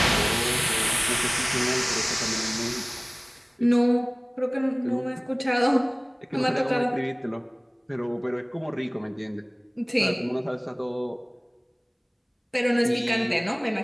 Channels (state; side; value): identical; both; correlation 1.00